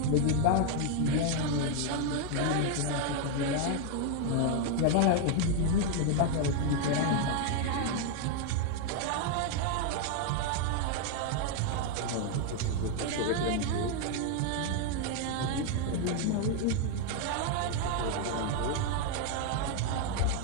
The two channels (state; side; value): different; both; correlation 0.01